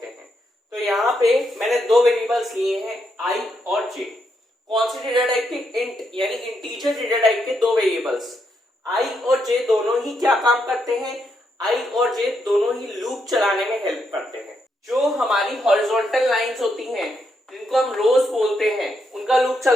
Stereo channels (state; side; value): normal; both; correlation 0.79